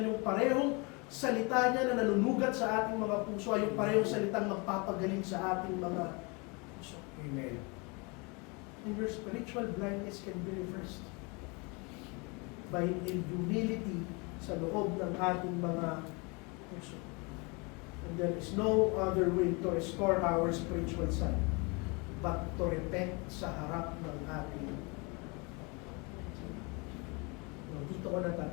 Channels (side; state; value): right; quieter; 29.7 dB